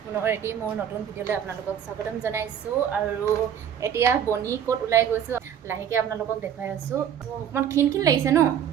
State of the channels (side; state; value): left; quieter; 9.0 dB